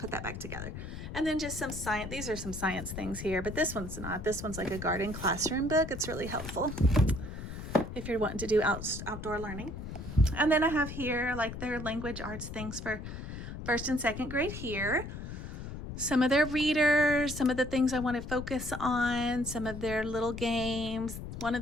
that back together. And then just some science, these are some science things here, but this one's not. This one's like a garden classroom book. It's really helpful if you're wanting to do outdoor learning. And then I have here like their language arts things for first and second grade here. Some of their readers, some of the things I want to focus on, some of their little games. One of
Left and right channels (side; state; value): left; noise; rumble, 8 dB below the sound